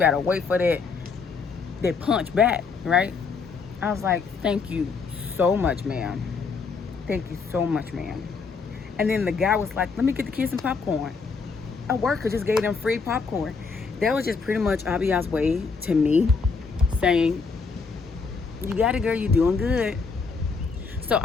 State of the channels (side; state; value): right; quieter; 4.9 dB